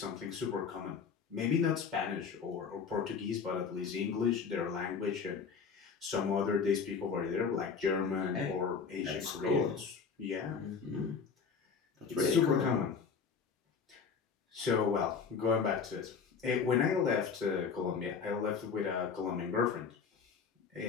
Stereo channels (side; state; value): right; quieter; 5.8 dB